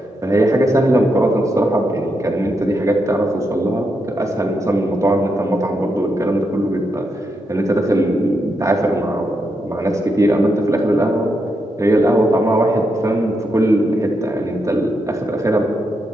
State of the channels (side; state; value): both; normal; correlation 0.82